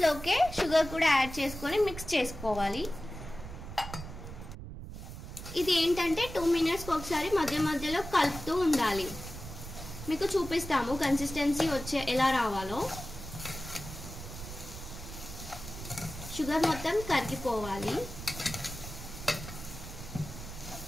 షుగర్ కూడా యాడ్ చేసుకొని మిక్స్ చేసుకోవాలి. ఇది ఏంటంటే 2 మినిట్స్కి ఒకసారి మధ్య మధ్యలో కలుపుతూ ఉండాలి. మీకు చూపిస్తాము కన్సిస్టెన్సీ ఎలా రావాలో. షుగర్ మొత్తం కరిగిపోవాలి.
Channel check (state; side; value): noise; right; rumble, 11 dB below the sound